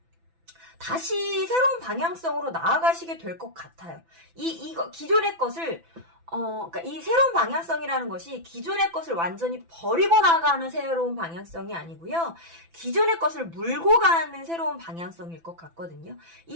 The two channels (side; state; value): left; late; 6.0 ms